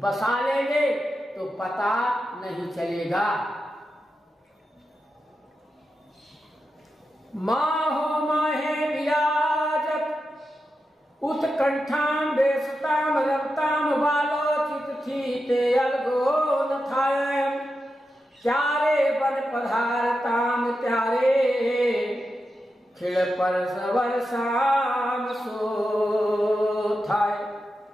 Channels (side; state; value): both; normal; correlation 0.89